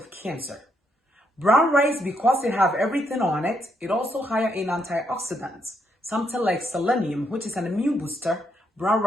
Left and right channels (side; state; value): both; normal; correlation 0.76